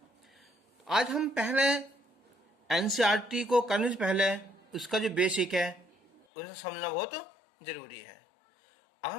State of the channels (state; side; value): drops out; right; at 6.2 s